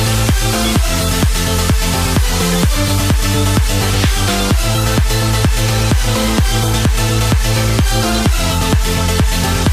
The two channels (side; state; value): both; identical; correlation 1.00